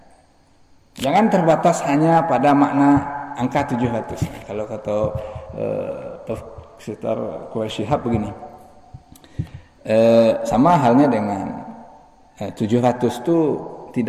Jangan terbatas hanya pada makna angka 700. Kalau kata Profesor Quraish Shihab begini, sama halnya dengan 700 itu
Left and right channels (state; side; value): identical; both; correlation 1.00